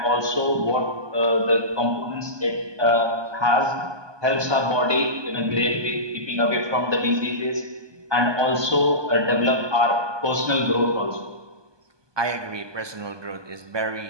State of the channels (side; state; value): left; late; 1.2 ms